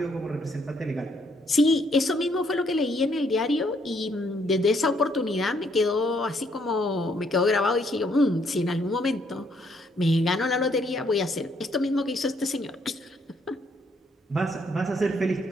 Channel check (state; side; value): normal; both; correlation 0.70